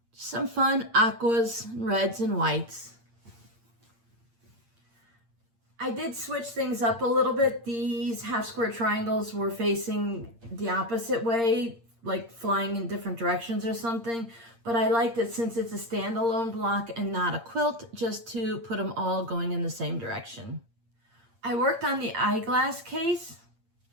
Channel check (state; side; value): late; left; 8.7 ms